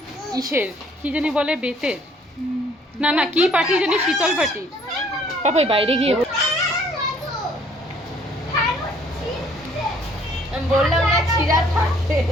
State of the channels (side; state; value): both; normal; correlation 0.60